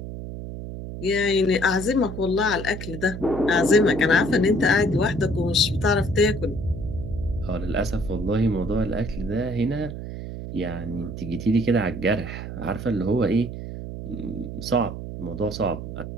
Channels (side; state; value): right; noise; hum, 8 dB below the sound